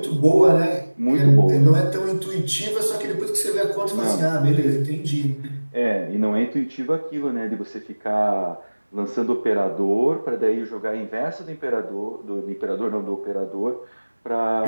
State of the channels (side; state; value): both; inverted; correlation -1.00